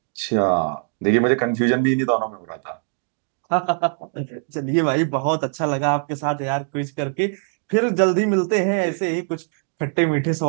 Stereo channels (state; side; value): silent; left; 57 dB below the other